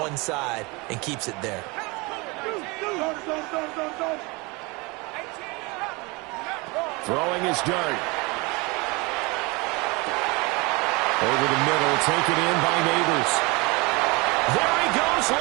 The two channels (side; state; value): left; quieter; 26.3 dB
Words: side and keeps it there. Throwing his dart. Over the middle, taken in by Neighbors. There he goes,